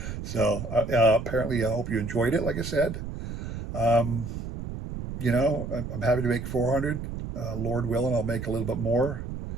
So apparently, I hope you enjoyed it. Like I said, um, I'm happy to make 400. Lord willing, I'll make a little bit more.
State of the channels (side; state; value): right; noise; rumble, 7 dB below the sound